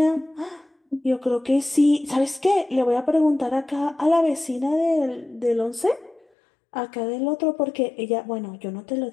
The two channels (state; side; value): drops out; right; at 6.2 s